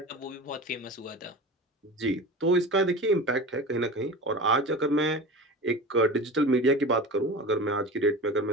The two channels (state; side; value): normal; both; correlation 0.32